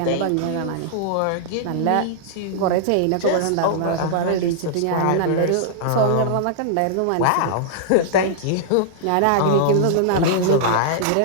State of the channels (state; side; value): different; both; correlation -0.01